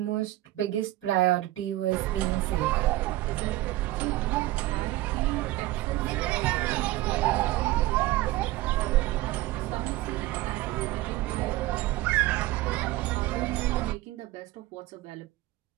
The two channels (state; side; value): quieter; left; 17.2 dB